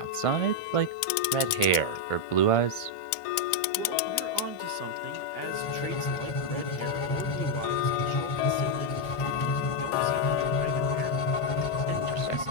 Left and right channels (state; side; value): late; right; 1.5 ms